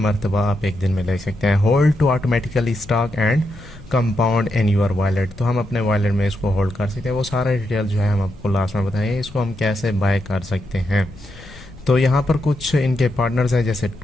आप एक दिन में ले सकते हैं। Hold to automatically stock and compound in your wallet, तो हम अपने वॉलेट में इसको होल्ड कर सकते हैं। वो सारा डिटेल जो है हम आपको लास्ट में बताएंगे, इसको हम कैसे बाय कर सकते हैं। तो यहाँ पर कुछ इनके पार्टनर्स हैं, जैसे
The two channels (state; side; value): noise; left; rumble, 20 dB below the sound